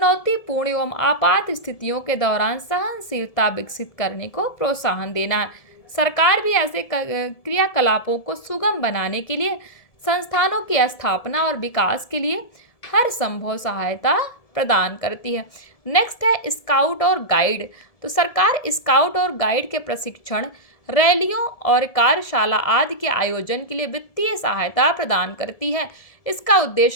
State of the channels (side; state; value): right; late; 1.7 ms